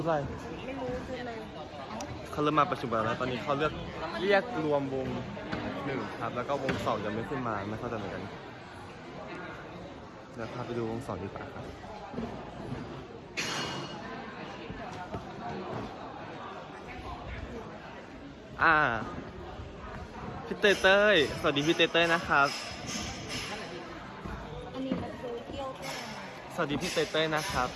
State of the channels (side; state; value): both; identical; correlation 1.00